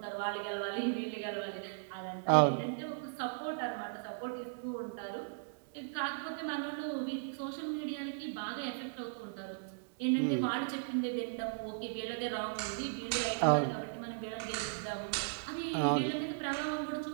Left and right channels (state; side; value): silent; left; digital silence